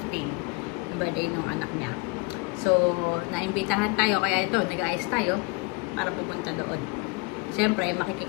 15. Birthday ng anak niya. So, naimbitahan tayo. Kaya ito, nag-ayos tayo para pupunta doon. Siyempre,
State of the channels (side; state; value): right; quieter; 28.1 dB